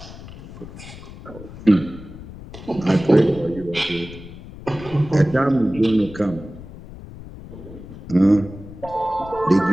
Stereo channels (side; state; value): left; noise; rumble, 15 dB below the sound